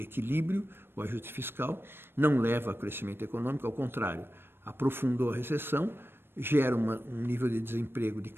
equilíbrio, o ajuste fiscal, não leva a crescimento econômico, ao contrário, aprofundou a recessão, gera um nível de desemprego de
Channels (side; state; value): left; late; 0.10 ms